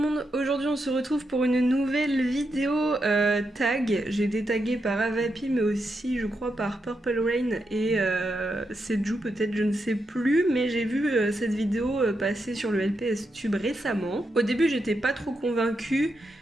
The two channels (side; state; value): both; normal; correlation 0.84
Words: monde! Aujourd'hui on se retrouve pour une nouvelle vidéo tag. J'ai été taguée par Avapi mais aussi je crois par Purple Rain et Seju peut-être, je ne sais plus, mais j'ai vu cette vidéo passer sur le LPS Tube récemment. Au début j'étais pas trop convaincue.